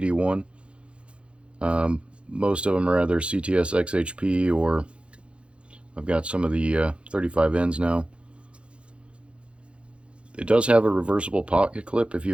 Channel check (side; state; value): left; late; 0.059 ms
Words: Most of them are either CTS XHP or I've got some of the 35Ns now. It does have a reversible pocket clip if